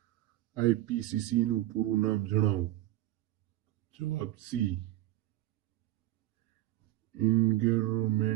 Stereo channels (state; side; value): quieter; left; 15.8 dB